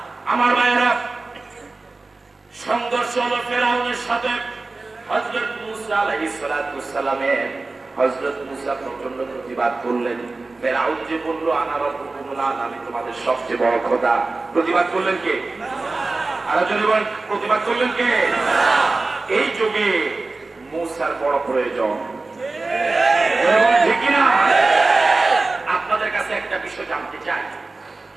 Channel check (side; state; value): left; quieter; 3.5 dB